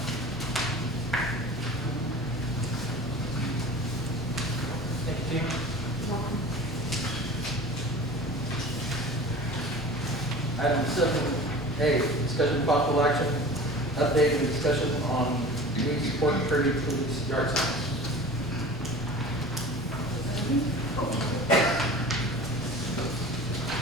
Discussion of possible action, update and discussion on community support and Kirby police yard signs.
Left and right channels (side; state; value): both; normal; correlation 0.39